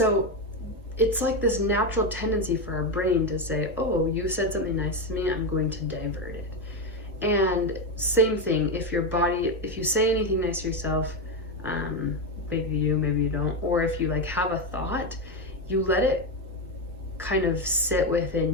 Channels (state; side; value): normal; both; correlation 0.10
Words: it's like this natural tendency for our brain to say, oh, you said something nice to me, I'm going to divert it. And same thing, if you say anything nice to yourself, maybe you don't, or if you like have a thought, you let it kind of sit